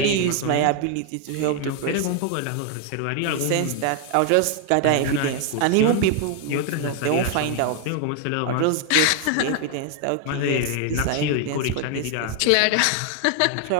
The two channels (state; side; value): different; both; correlation 0.00